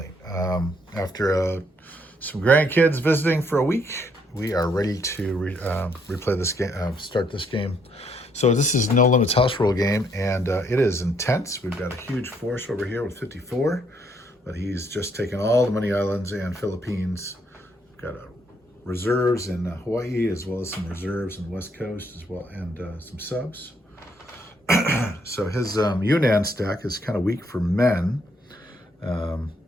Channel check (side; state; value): both; normal; correlation 0.71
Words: After some grandkids visiting for a week, we are ready to replay this game, start this game. So this is No Limits House Rule game, and it is intense. We've got a huge force over here with 54, but he's just taken all the Money Islands and Philippines. We've got reserves in Hawaii, as well as some reserves in the West Coast, as well, and some subs. So his Yunnan stack is kind of weak for men,